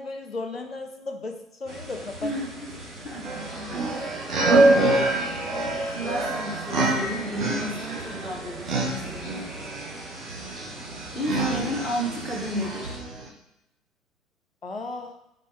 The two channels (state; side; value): normal; both; correlation 0.58